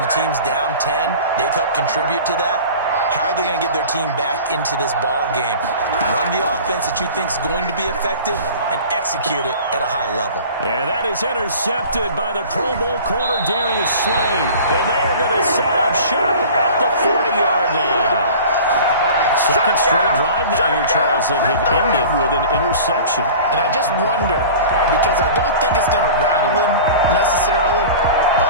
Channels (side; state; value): both; inverted; correlation -0.40